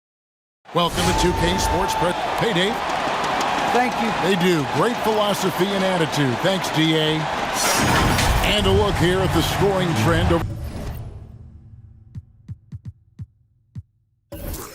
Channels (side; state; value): both; identical; correlation 1.00